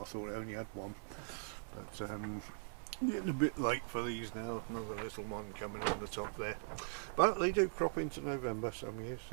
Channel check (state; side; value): silent; left; digital silence